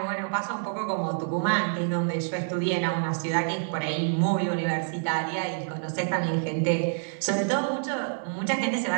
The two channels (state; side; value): silent; left; digital silence